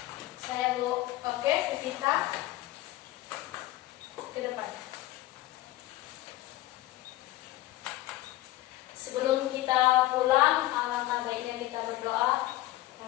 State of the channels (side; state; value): right; quieter; 16.8 dB